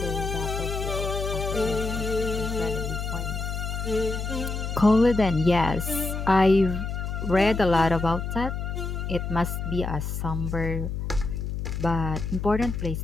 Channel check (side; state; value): left; noise; hum, 4 dB below the sound